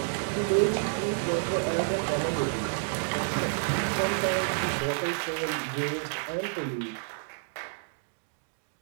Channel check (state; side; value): silent; left; digital silence